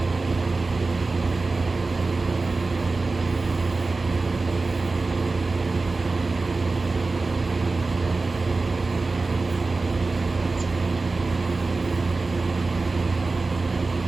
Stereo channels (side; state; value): left; quieter; 3.6 dB